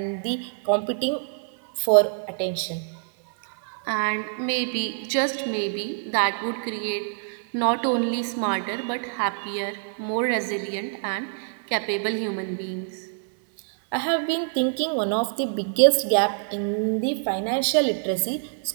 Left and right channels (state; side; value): silent; left; 58 dB below the other